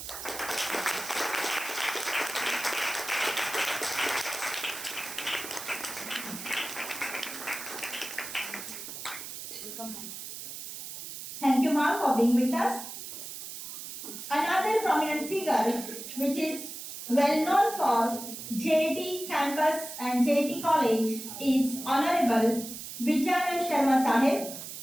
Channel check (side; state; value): right; noise; hiss, 9 dB below the sound